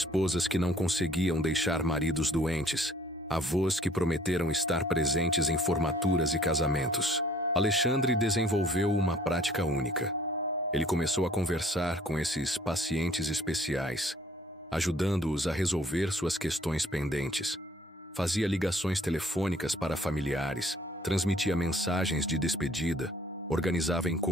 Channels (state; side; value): normal; both; correlation 0.58